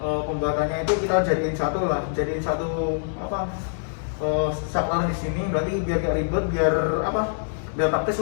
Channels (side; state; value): right; silent; digital silence